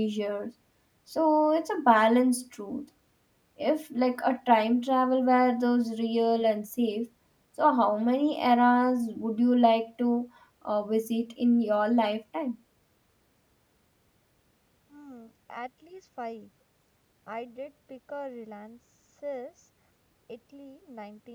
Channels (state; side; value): identical; both; correlation 1.00